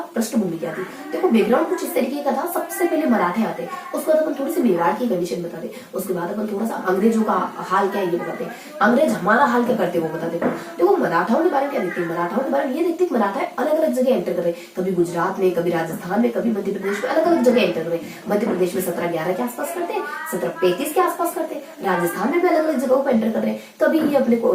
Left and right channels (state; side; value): identical; both; correlation 1.00